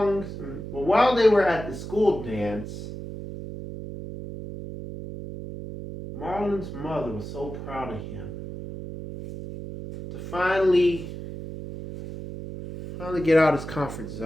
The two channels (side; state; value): right; noise; hum, 9 dB below the sound